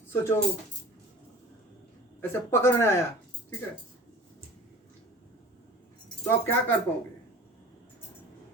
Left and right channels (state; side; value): normal; both; correlation 0.41